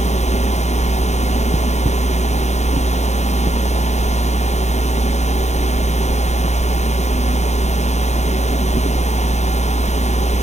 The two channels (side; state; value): right; late; 0.33 ms